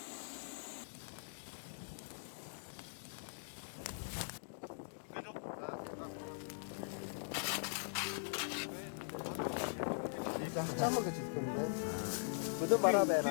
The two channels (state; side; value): silent; right; digital silence